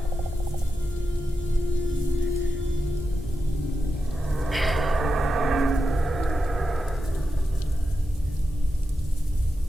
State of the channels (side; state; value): both; normal; correlation 0.89